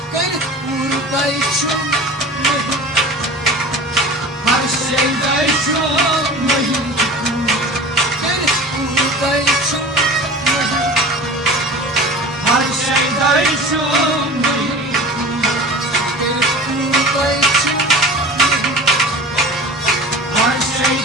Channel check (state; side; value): normal; both; correlation 0.37